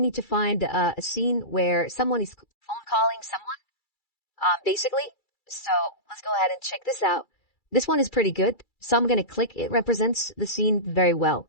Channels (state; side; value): late; right; 2.3 ms